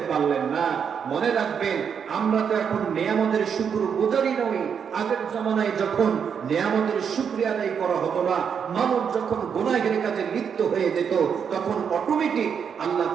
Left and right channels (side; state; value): left; quieter; 7.1 dB